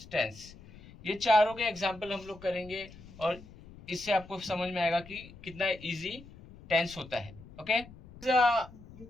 टेंस. ये चारों के एग्जाम्पल हम लोग करेंगे और इससे आपको समझ में आएगा कि कितना इजी टेंस होता है. Okay,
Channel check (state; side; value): noise; left; rumble, 19 dB below the sound